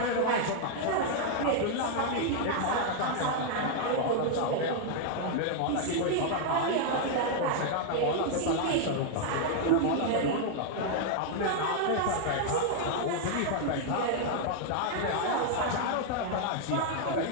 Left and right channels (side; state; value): both; different; correlation 0.00